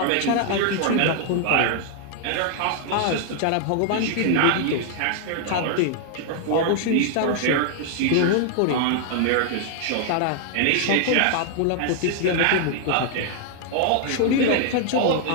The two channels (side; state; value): both; different; correlation 0.00